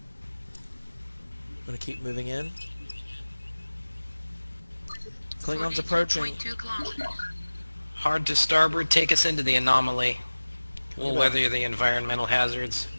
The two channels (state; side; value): inverted; both; correlation -1.00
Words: I'm gonna keep moving in. Klingons 42.2 approaching. kilometers. Hard to starboard, take us into the anomaly. We'll weather the environmental hazards.